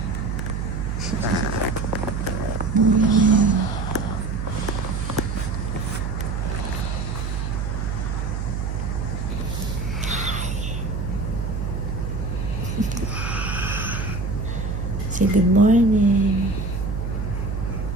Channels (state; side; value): noise; right; hum, 2 dB below the sound